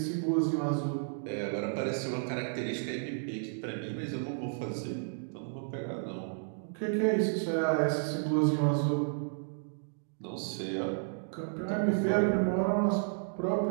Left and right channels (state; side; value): silent; left; digital silence